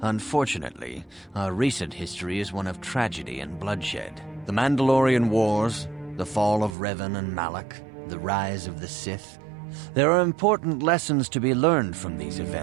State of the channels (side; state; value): left; drops out; at 6.8 s